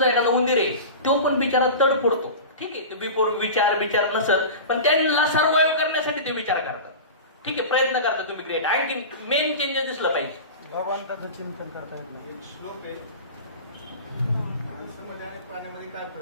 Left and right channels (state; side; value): inverted; both; correlation -0.31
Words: एखादा उंदीर आहे, तो पण बिचारा तड पडतो. ठीक आहे, बिफोर विचार नसल, पण त्यांना सर्वाइव्ह करण्यासाठी ते विचार करतात. ठीक आहे, प्रयत्न करता तुम्ही. ग्रेट. आणखी मेन चेंजेस दिसलं पाहिजे. भगवंताचं चिंतन करता येत नाही. एक श्लोक आहे, माणसामध्ये आणि प्राण्यामध्ये काय